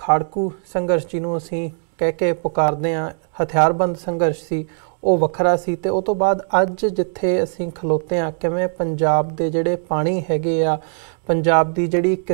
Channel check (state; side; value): silent; left; digital silence